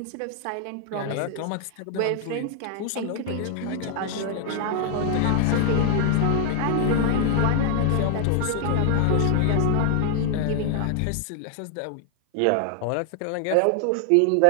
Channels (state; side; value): different; both; correlation 0.00